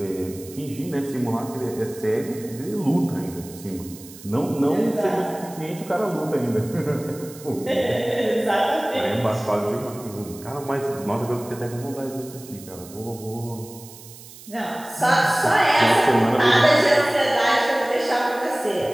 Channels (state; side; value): noise; right; hiss, 18 dB below the sound